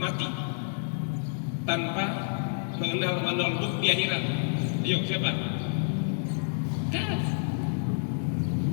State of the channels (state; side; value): silent; right; 59 dB below the other